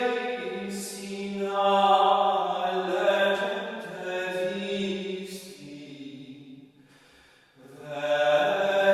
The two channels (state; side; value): identical; both; correlation 1.00